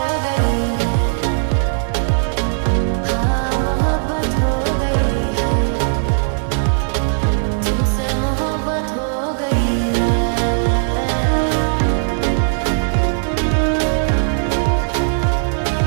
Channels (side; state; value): left; silent; digital silence